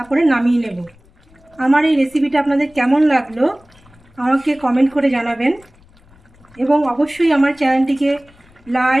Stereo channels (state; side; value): noise; left; rumble, 29 dB below the sound